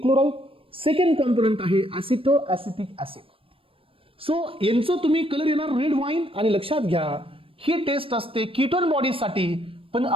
क्लोराइड, सेकंड कॉम्पोनंट आहे ऍसिटो ऍसिटिक ऍसिड. सो यांचं तुम्ही कलर येणार रेड वाईन. आणि लक्षात घ्या, ही टेस्ट असते कीटोन बॉडीजसाठी, पण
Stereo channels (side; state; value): left; late; 0.26 ms